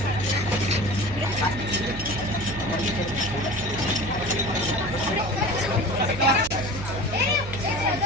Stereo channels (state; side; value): noise; right; hum, 10 dB below the sound